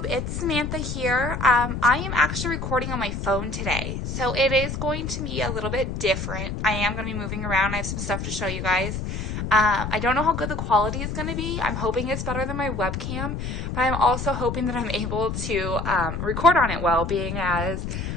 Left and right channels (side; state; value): left; noise; rumble, 4 dB below the sound